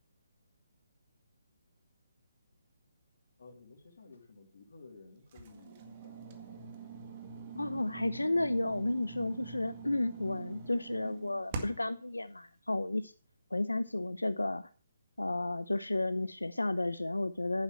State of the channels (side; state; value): both; inverted; correlation -0.97